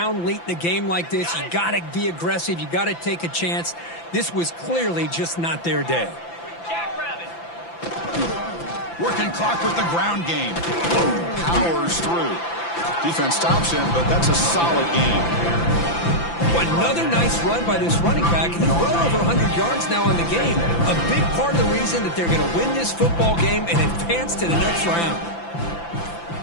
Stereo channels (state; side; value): late; right; 5.9 ms